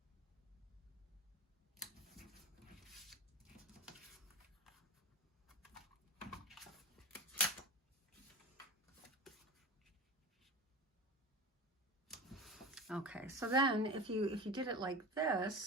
Okay, so then if you did it like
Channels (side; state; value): both; normal; correlation 0.30